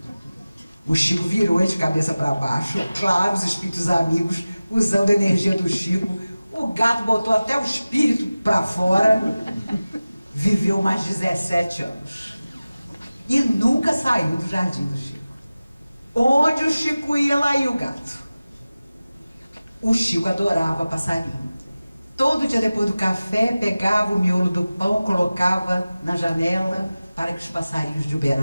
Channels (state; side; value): inverted; both; correlation -0.96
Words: O Chico virou ele de cabeça para baixo, claro, os espíritos amigos usando a energia do Chico, o gato botou até o espírito para fora, viveu mais 17 anos e nunca saiu do jardim do Chico. Onde o Chico ia, lá ia o gato. O Chico adorava passarinho. Todo dia depois do café, pegava o miolo do pão, colocava na janela para que os passarinhos de